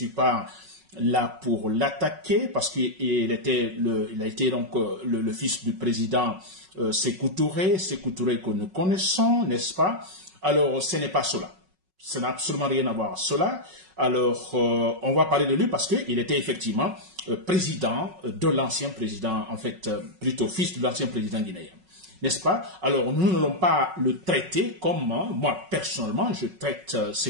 pas là pour l'attaquer, parce qu'il a été donc le fils du président Sékou Touré que nous connaissons, n'est-ce pas? Alors, ce n'est pas cela. Ça n'a absolument rien à voir avec cela. Alors, on va parler de lui parce qu'il était effectivement président de l'ancien président, en fait, plutôt fils de l'ancien président guinéen. N'est-ce pas? Alors, nous n'allons pas le traiter comme, moi, personnellement, je traite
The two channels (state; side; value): late; left; 5.4 ms